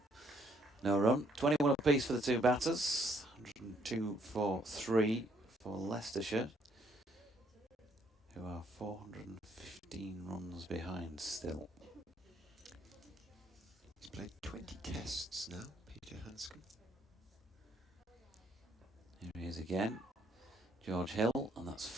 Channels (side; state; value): both; normal; correlation 0.68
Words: No run. 21 apiece for the two batters. 102 for 3 for Leicestershire, who are 415 runs behind still. He's played 20 tests now, Peter Hanscom. Here he is again. George Hill, and that's